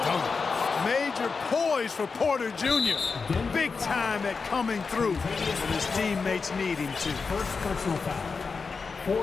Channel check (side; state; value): right; quieter; 4.8 dB